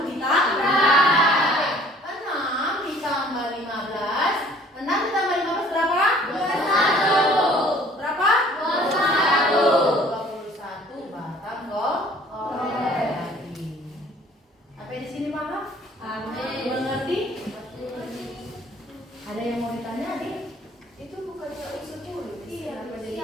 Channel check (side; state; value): both; normal; correlation 0.54